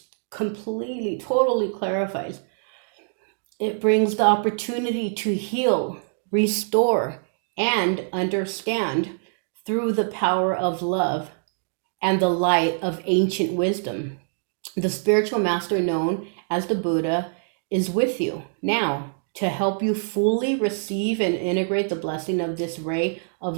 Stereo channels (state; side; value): silent; left; digital silence